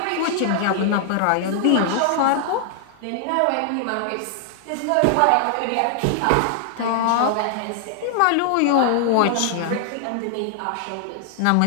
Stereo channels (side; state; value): both; different; correlation 0.00